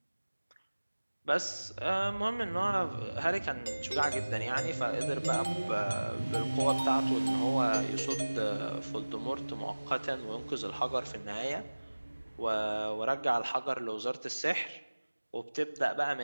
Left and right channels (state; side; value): inverted; both; correlation -1.00